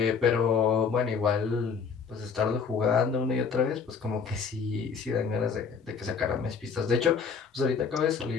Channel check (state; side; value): quieter; right; 5.9 dB